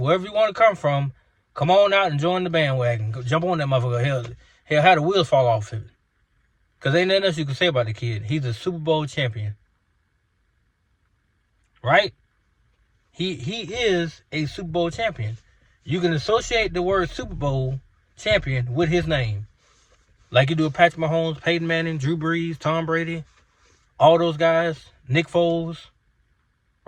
you want to come from. Come on out and join the bandwagon. Go jump on that motherfucker. Hell, how the wheels fall off of it. Because ain't nothing else you can say about the kid. He's a Super Bowl champion. Right? He is a Super Bowl champion. You can associate the word Super Bowl champion with his name. Like you do with Patrick Mahomes, Peyton Manning, Drew Brees, Tom Brady, all those guys, Nick Foles,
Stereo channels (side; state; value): both; identical; correlation 1.00